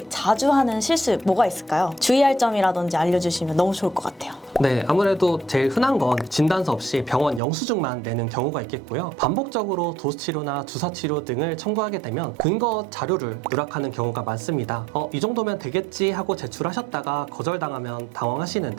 자주 하는 실수 뭐가 있을까요? 주의할 점이라든지 알려주시면 너무 좋을 것 같아요. 네, 아무래도 제일 흔한 건 진단서 없이 병원 영수증만 내는 경우가 있겠고요. 반복적으로 도수치료나 주사치료 등을 청구하게 되면 근거 자료를 누락하는 경우가 많습니다. 이 정도면 되겠지 하고 제출하셨다가 거절당하면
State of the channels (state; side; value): drops out; left; at 7.4 s